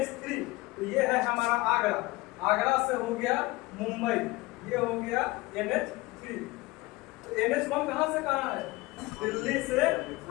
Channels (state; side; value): quieter; right; 21.1 dB